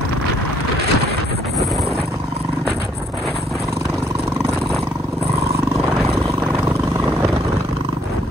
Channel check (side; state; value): both; normal; correlation 0.67